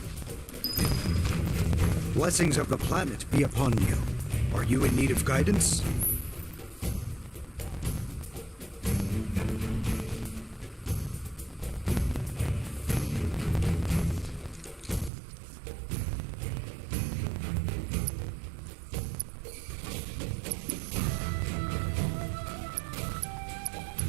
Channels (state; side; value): drops out; left; at 15.1 s